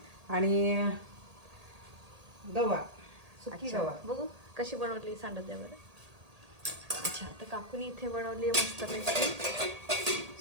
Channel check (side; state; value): left; late; 1.8 ms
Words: आणि गवार, सुकी अच्छा, गवार. बघू कशी बनवली सांगत द्या बरं. अच्छा, तर काकूनी इथे बनवली आहे मस्तपैकी